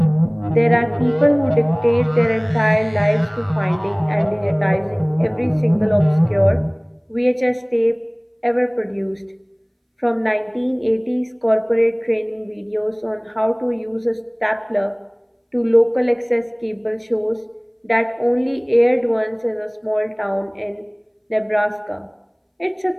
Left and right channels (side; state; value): both; identical; correlation 1.00